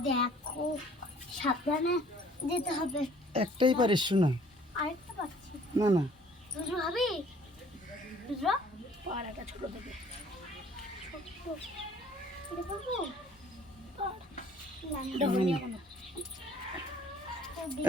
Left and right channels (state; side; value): normal; both; correlation 0.56